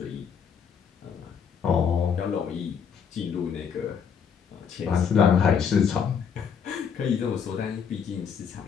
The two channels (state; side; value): quieter; right; 7.1 dB